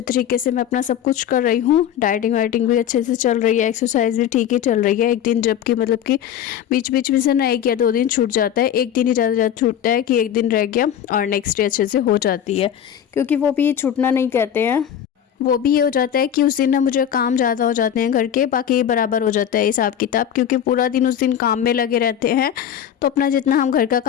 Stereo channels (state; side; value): quieter; right; 9.7 dB